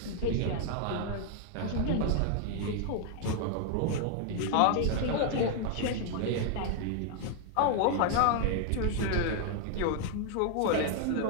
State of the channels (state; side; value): different; both; correlation 0.00